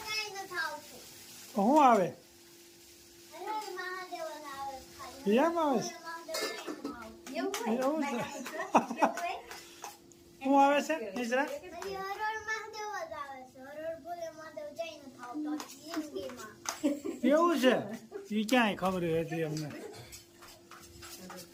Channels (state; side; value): identical; both; correlation 1.00